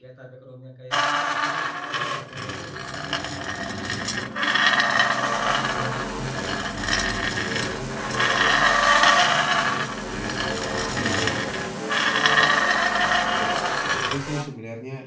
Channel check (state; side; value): identical; both; correlation 1.00